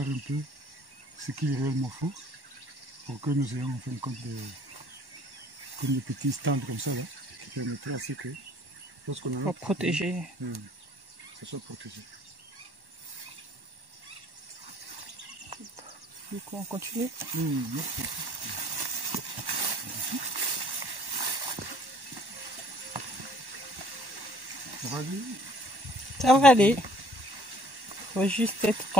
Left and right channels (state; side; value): late; left; 1.1 ms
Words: un peu ce qu'il réellement faut pour que nous ayons en fin de compte comme des petits stands comme ça là, qui permettraient à ce que lorsqu'on a pour protéger, ça soit protégé. Du coup, on continue. Ça va aller? Ça va aller. Il faut juste être